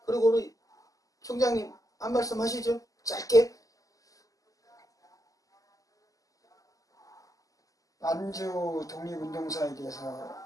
그리고 우리 총장님 한 말씀 하시죠. 짧게. 만주 독립운동사에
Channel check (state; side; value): late; right; 0.17 ms